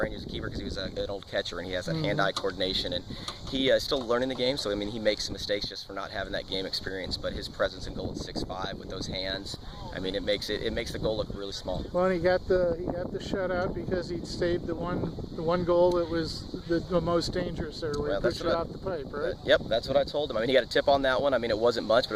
you as a keeper, because he was an old catcher and he has that hand-eye coordination, and he is still learning the game. So I mean, he makes mistakes just for not having that game experience. But his presence in goal at 6'5" with those hands, I mean, it makes the goal look really small. Well, and he got the shutout because he saved the one goal that was the most dangerous there, where he pushed it off the pipe, right? Yep, that's what I told him. I mean, he got a tip on that one. I mean, it wasn't much, but it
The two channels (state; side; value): identical; both; correlation 1.00